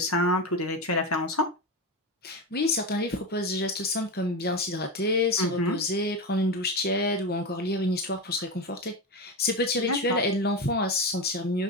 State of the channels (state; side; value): normal; both; correlation 0.17